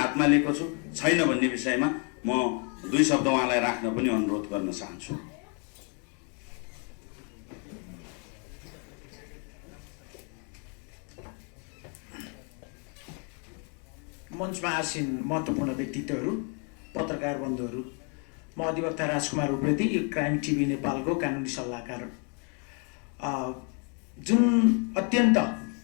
लिएको छु छैन भन्ने विषयमा म 2 शब्द उहाँलाई राख्न पनि अनुरोध गर्न चाहन्छु। मञ्चमा आसीन महत्त्वपूर्ण व्यक्तित्वहरू, पत्रकार बन्धुहरू, म अधिवक्ता राजकुमार उप्रेती, क्राइम टिभी नेपालको कानुनी सल्लाहकार। जुन अत्यन्त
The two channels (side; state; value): right; quieter; 37.7 dB